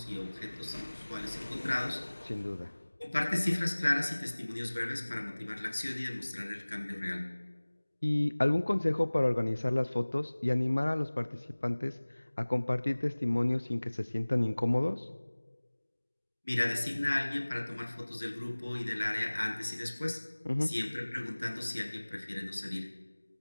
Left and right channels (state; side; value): inverted; both; correlation -1.00